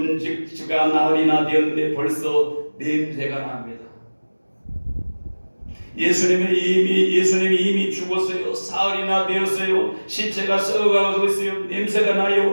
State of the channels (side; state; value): both; inverted; correlation -1.00